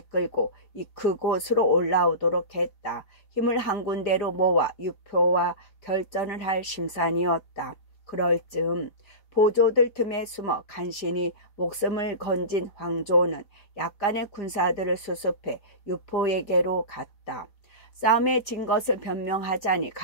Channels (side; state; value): right; late; 4.6 ms